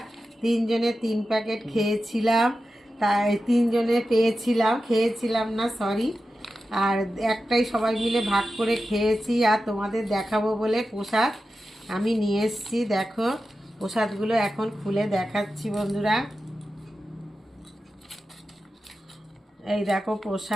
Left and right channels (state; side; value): normal; both; correlation 0.92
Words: তিনজনে 3 প্যাকেট খেয়েছিলাম, তাই তিনজনে খেয়েছিলাম না, সরি। আর একটাই সবাই মিলে ভাগ করে খেয়েছি। আর তোমাদের দেখাবো বলে প্রসাদ আমি নিয়ে এসছি, দেখো প্রসাদগুলো এখন খুলে দেখাচ্ছি বন্ধুরা। এই দেখো